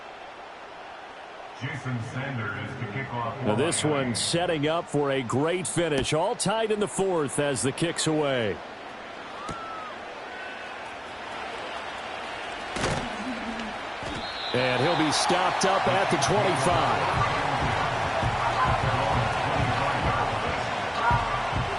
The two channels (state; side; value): identical; both; correlation 1.00